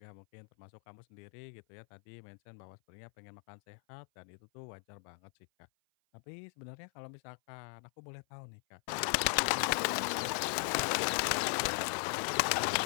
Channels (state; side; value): silent; right; 53 dB below the other